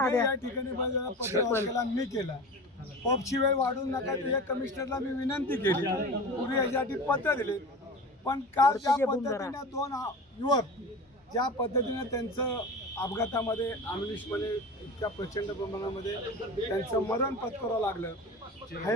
या ठिकाणी पत्र मी केला। पबची वेळ वाढवू नका ते कमिशनरला मी विनंती केली, पूर्वी यासाठी पत्र दिले। पण काल ज्या पद्धतीने दोन युवक ज्या पद्धतीने त्यांचं अपघातामध्ये अमलिशपणे इतक्या प्रचंड प्रमाणामध्ये त्यांचं मरण पत्करावं लागलं,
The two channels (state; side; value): normal; both; correlation 0.31